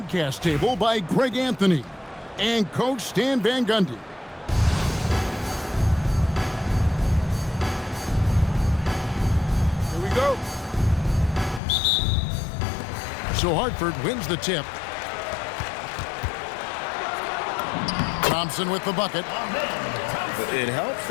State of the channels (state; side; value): drops out; right; at 11.6 s